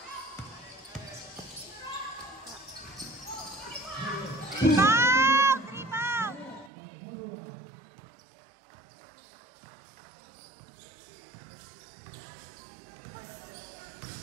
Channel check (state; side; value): drops out; left; at 6.7 s